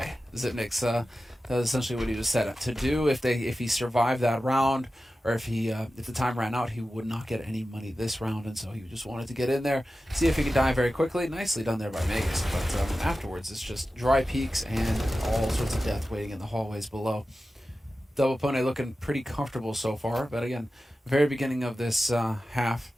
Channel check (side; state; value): both; normal; correlation 0.94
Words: Zipnik's that was essentially what he was set up to do. If he survived that round, or if the time ran out, he would not get any money this round, and so he just wanted to get in there, see if he could die very quickly. Nicely done there by Magus, but afterwards it's just dry peaks and all sorts of death waiting in the hallways below. Double Pony looking pretty comfortable so far, but again, very beginning of this half,